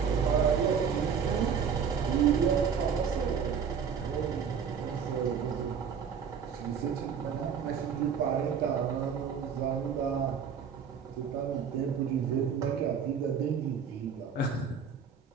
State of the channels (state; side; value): quieter; left; 7.0 dB